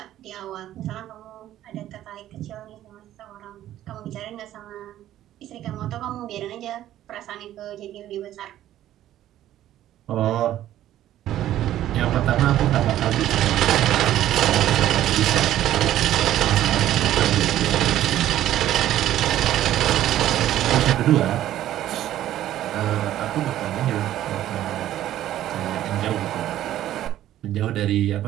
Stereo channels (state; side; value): quieter; left; 12.8 dB